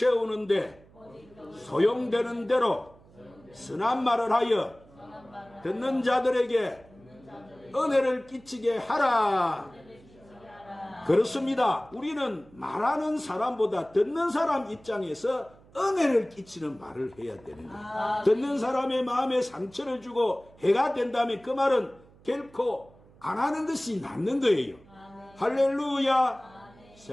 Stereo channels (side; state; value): right; noise; hum, 26 dB below the sound